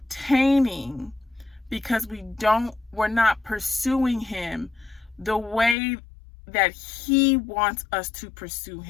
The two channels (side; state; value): right; drops out; at 5.8 s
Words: because we're not pursuing Him the way that He wants us to pursue